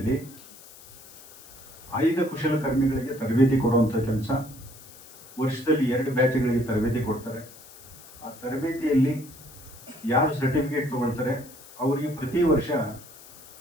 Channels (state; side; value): noise; left; hiss, 20 dB below the sound